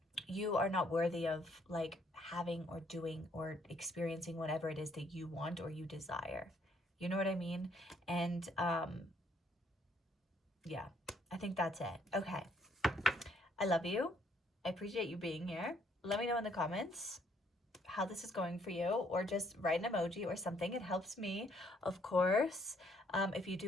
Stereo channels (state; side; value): normal; both; correlation 0.67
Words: you are not worthy of like having or doing or experiencing whatever it is that you want or you desire. You know what I mean? And yeah, I think that's it. Okay. I love you. I appreciate you being here. Let me know in the comments how this is going for you, or just write an emoji or something. It helps me, of course. If you